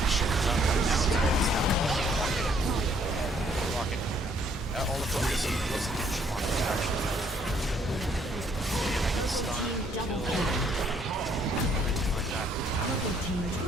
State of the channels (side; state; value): both; normal; correlation 0.66